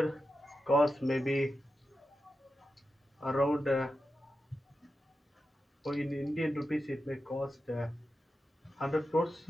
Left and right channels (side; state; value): both; normal; correlation 0.90